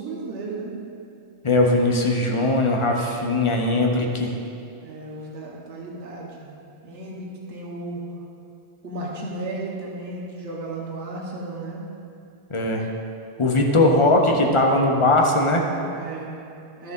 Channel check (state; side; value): late; right; 1.4 ms